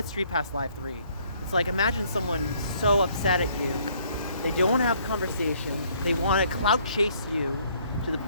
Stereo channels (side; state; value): both; inverted; correlation -0.64